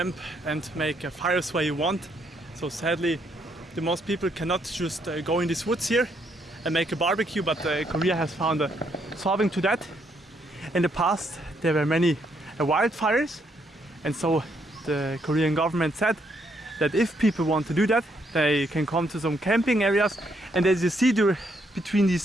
and make fires where you want. So sadly, the most people cannot just go in these woods here and make a barbecue, but Korea has found a solving to that. In the past, there were many wildfires, and so the Korean government said that if people want to do that, they can come to some camping areas. And as you see there, between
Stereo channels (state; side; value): normal; both; correlation 0.74